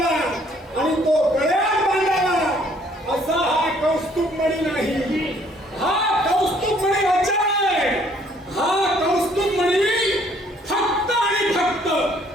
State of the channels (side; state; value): both; normal; correlation 0.62